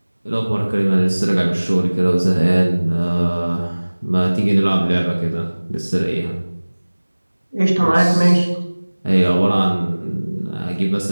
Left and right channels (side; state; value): both; inverted; correlation -1.00